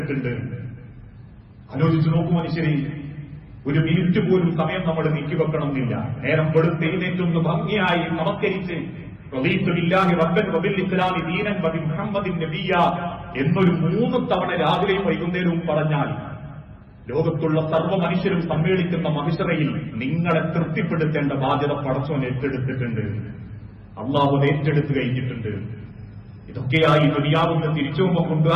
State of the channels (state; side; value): identical; both; correlation 1.00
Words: ആലോചിച്ചു നോക്കൂ മനുഷ്യരെ, ഒരു മിനിറ്റ് പോലും സമയം നമ്മൾ നീക്കിവെക്കണമെന്നില്ല. നേരം വെളുത്ത് എഴുന്നേറ്റൊന്ന് ഭംഗിയായി നമസ്കരിച്ച് റദീതു ബില്ലാഹി റബ്ബൻ വബിൽ ഇസ്ലാമി ദീനൻ വബിമുഹമ്മദിൻ നബിയ്യ എന്നൊരു 3 തവണ രാവിലെയും വൈകുന്നേരവും പറഞ്ഞാൽ ലോകത്തുള്ള സർവ്വ മനുഷ്യരും സമ്മേളിക്കുന്ന മഹിശറയിൽ നിങ്ങളെ തൃപ്തിപ്പെടുത്തേണ്ട ബാധ്യത പടച്ചോൻ ഏറ്റെടുത്തിട്ടുണ്ട്. അള്ളാഹു ഏറ്റെടുത്തു കഴിഞ്ഞിട്ടുണ്ട്. ഇതൊക്കെയായി ദുനിയാവിന്റെ തിരിച്ചുപോകുമ്പോൾ